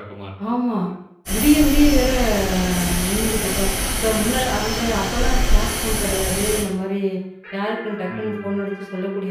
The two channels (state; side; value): identical; both; correlation 1.00